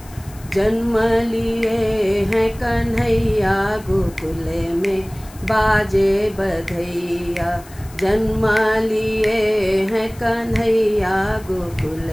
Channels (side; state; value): left; noise; hiss, 22 dB below the sound